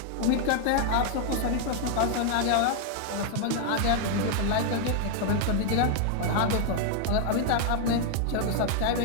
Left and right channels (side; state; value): both; different; correlation 0.00